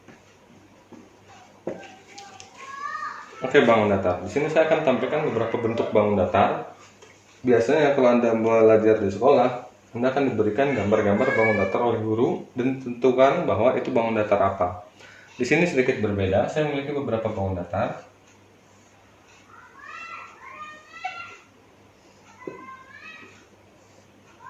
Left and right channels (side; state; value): both; identical; correlation 1.00